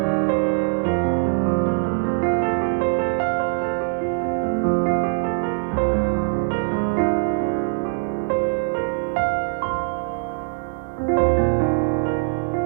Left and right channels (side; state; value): left; silent; 62 dB below the other